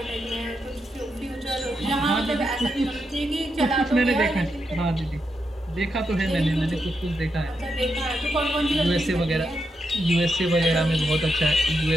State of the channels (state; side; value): normal; both; correlation 0.84